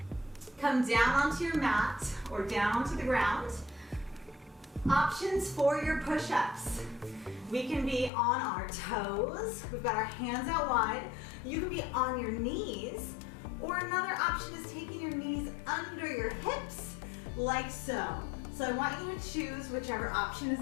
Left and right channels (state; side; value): drops out; right; at 8.1 s